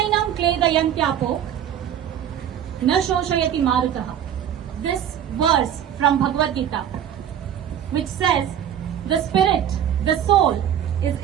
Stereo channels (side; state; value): left; quieter; 9.7 dB